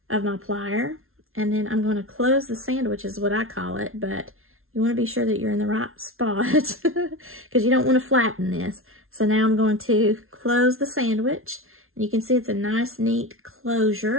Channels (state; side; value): late; left; 0.61 ms